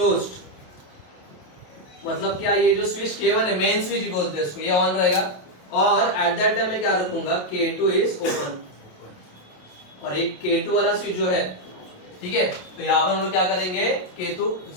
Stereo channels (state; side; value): late; right; 27 ms